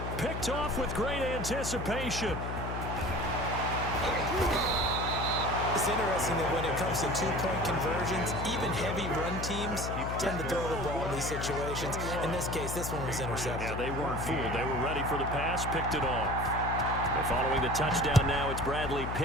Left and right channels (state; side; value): noise; left; hum, 4 dB below the sound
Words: Picked off with great anticipation. It's interesting that when it comes to 2-point conversions, even heavy run teams tend to throw the ball in these situations. In this case, this one was intercepted. Yeah, they weren't fooled. They were ready for the pass, picked it off. And following the touchdown now, it's Bradley